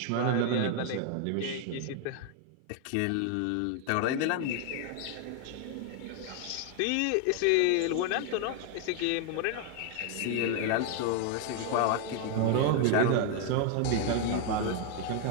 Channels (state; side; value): different; both; correlation 0.00